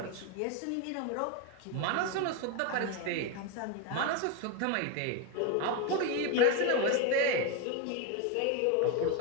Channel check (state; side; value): different; both; correlation 0.02